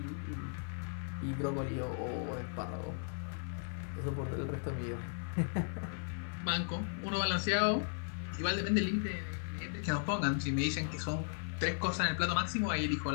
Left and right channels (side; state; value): right; silent; 53 dB below the other